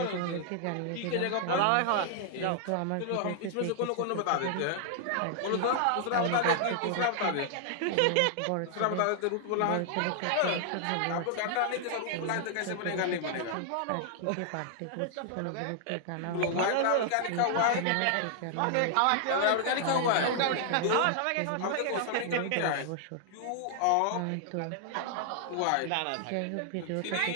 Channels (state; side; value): different; both; correlation -0.01